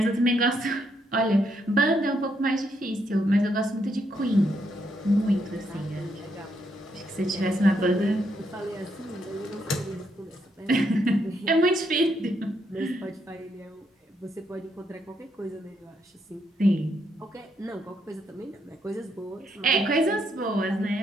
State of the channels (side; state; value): both; normal; correlation 0.76